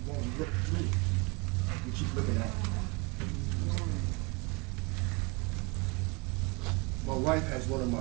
won't look through it. We keep looking at it. My wife has one of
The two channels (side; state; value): left; quieter; 27.3 dB